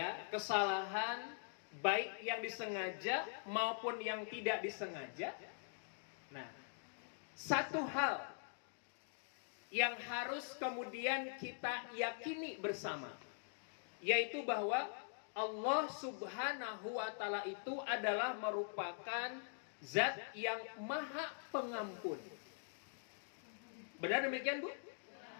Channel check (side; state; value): right; silent; digital silence